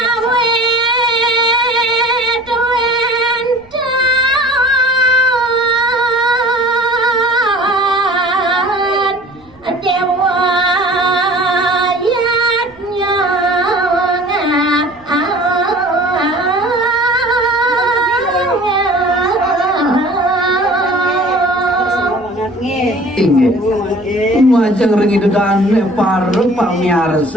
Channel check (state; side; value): noise; right; rumble, 29 dB below the sound